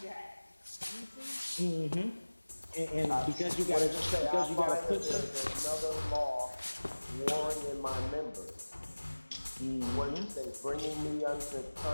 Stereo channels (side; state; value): both; inverted; correlation -1.00